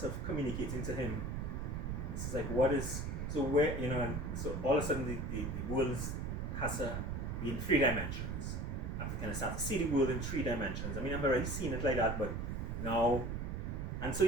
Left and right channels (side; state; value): right; noise; rumble, 3 dB below the sound